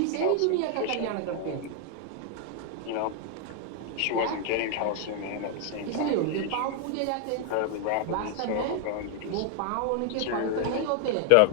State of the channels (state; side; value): different; both; correlation 0.00